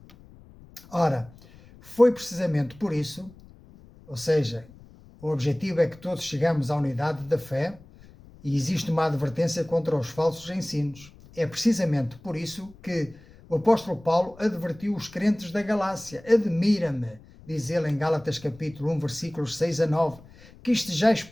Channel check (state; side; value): noise; left; rumble, 22 dB below the sound